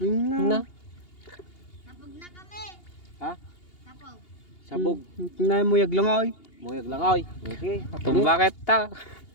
Na. Tapog na kami. Ha? Tapog. Sabog. Nay mo yag lang ay. Muyag lang ay. Okay. Itong bakit ta?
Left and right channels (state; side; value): late; right; 2.8 ms